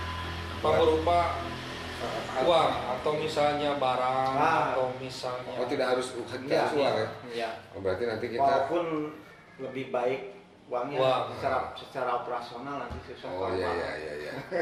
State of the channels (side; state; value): both; identical; correlation 1.00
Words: Apa berupa uang atau misalnya barang Ah. atau misalnya tidak harus uang ya. Iya. Oh, berarti nanti kita Walaupun lebih baik uangnya Uang. secara operasional nanti susah. Oh iya iya iya iya.